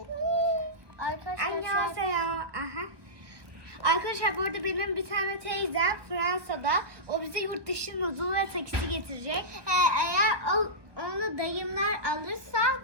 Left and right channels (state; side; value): late; left; 1.2 ms